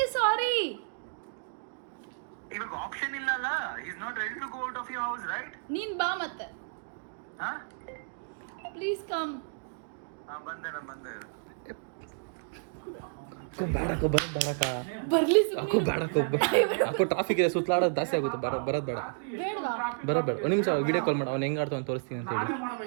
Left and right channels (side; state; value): left; silent; digital silence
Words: sorry? ಇವಾಗ ಆಪ್ಷನ್ ಇಲ್ಲ ಅಲ್ಲ. he is not ready to go out of your house, right? ನೀನ್ ಬಾ ಮತ್ತೆ. ಹಾ, ಪ್ಲೀಸ್ ಕಮ್. ಬಂದೆ. ಅಕ್ಕೋ ಬೇಡಕ್ಕ, ಬರೋದು ಬೇಡಕ್ಕ. ಬರ್ಲಿ ಅಕ್ಕೋ ಬೇಡಕ್ಕ, ಅಕ್ಕೋ ಟ್ರಾಫಿಕ್ ಇದೆ, ಸುತ್ತಲಾಡೋದು ಜಾಸ್ತಿ ಆಗುತ್ತೆ. ಬರೋದು ಬೇಡ. ಬೇಡವಾ? ಬೇಡ ಒಂದು ನಿಮಿಷ ವಿಡಿಯೋ ಕಾಲ್ ಮಾಡಿ. ಅವ್ನು ಹೆಂಗೆ ಆಡ್ತಾವ ತೋರಿಸ್ತೀನಿ ಅಂತ ಹೇಳಿ